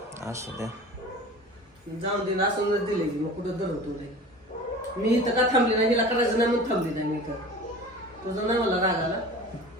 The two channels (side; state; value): both; normal; correlation 0.39